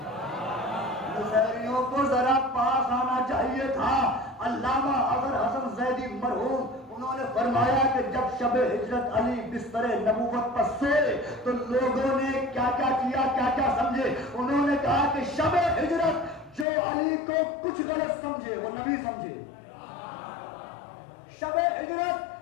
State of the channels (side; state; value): right; drops out; at 16.7 s